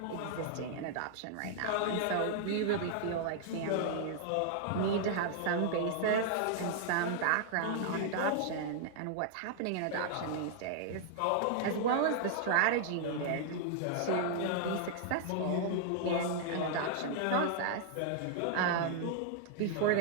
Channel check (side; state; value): both; different; correlation -0.01